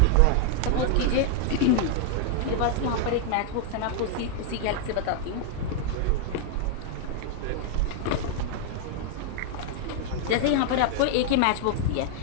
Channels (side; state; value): both; different; correlation 0.00